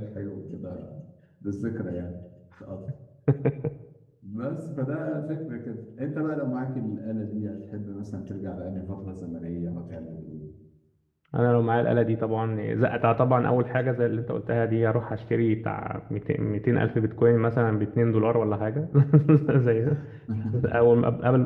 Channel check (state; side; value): identical; both; correlation 1.00